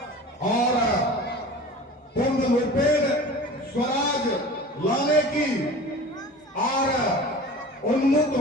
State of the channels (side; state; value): both; normal; correlation 0.38